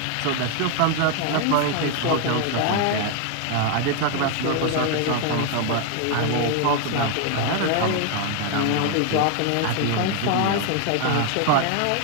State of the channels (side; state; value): both; different; correlation 0.01